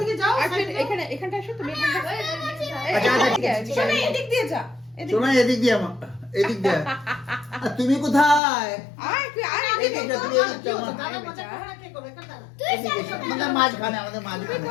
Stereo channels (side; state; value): right; drops out; at 8.4 s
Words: যাও। আসো, এখানে এখানটা আসো তুমি। এখানটা আচ্ছা, এদিকে আসো। শোনো এদিক দিয়ে যা। শোনো এদিক দিয়ে আমার এদিক দিয়ে। আর তুমি কোথায়? আয় তুই আয় এই এদিকে। দিকটা, তুমি এদিকটা আমার। দাদা মজা করে না, কে করবে? এখানে দাঁড়া। এদিকে এসো। আমাদের মাঝখানে, আমাদের তুই মাঝখানে।